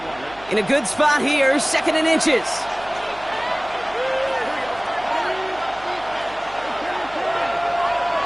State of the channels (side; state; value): right; noise; hum, 22 dB below the sound